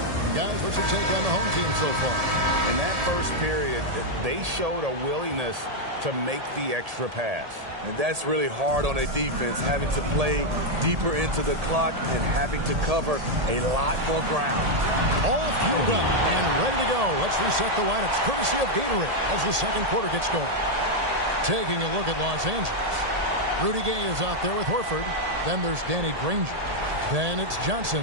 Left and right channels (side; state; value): left; late; 1.8 ms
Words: Guys, what's your take on the home team so far? In that first period, they showed a willingness to make the extra pass. And that's really hard on a defense, having to play deeper into the clock and having to cover a lot more ground. All fueled up and ready to go. Let's reset the lineups courtesy of Gatorade as the second quarter gets going. Taking a look at Los Angeles. Rudy Gay is out there with Horford. Then there's Danny Granger. Then it's